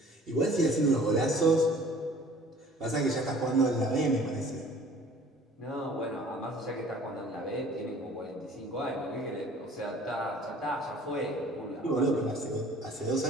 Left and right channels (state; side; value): normal; both; correlation 0.50